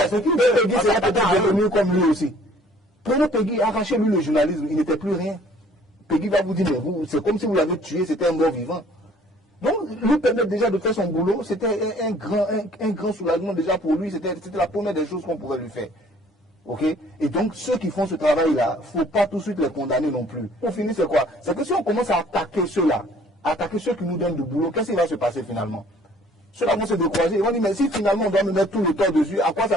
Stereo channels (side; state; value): both; normal; correlation 0.56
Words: C'est qui Peggy sera peut-être devenu comme lui aussi. Prenez Peggy, arrachez-lui le journalisme, il n'était plus rien. Peggy va vous dire, mais c'est comme si vous l'avez tué, c'était un mort vivant. Donc, lui permettre déjà de faire son boulot, c'était un grand soulagement déjà pour lui, c'était la première des choses qu'on pouvait lui faire. Ok? Et donc, ceux qui font ce travail-là, il ne faut pas tout de suite les condamner non plus. Pour finir, c'est quoi? C'est que si on commence à attaquer ceux-là, attaquer ceux qui nous donnent du boulot, qu'est-ce qui va se passer finalement? Ceux-là vont se décourager. Ils vont dire, mais si finalement on doit me mettre tout le temps dessus, à quoi ça